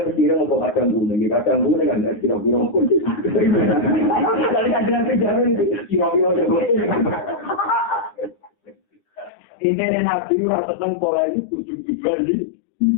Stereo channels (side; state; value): right; drops out; at 9.3 s